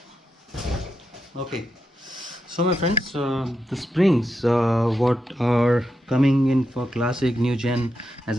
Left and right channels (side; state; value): both; normal; correlation 0.86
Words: Okay, so my friends, the springs what are coming in for classic new gen as